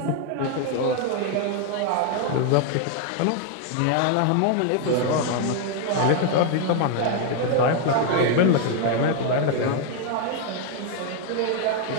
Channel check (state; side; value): different; both; correlation 0.00